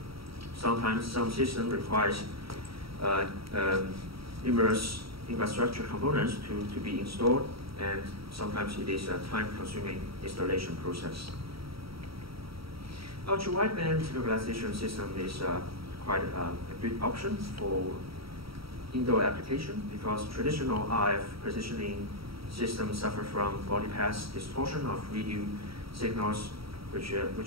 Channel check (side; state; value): left; late; 0.75 ms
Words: sometimes some system requires numerous infrastructure components to be installed, and sometimes it is a time-consuming installation process. Ultra-wideband localization system is quite a good option for indoor application because traditional RF positioning systems suffer from body path distortion of radio signals which